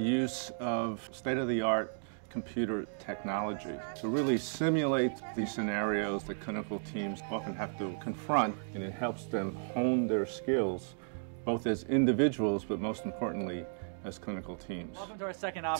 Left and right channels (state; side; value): silent; left; digital silence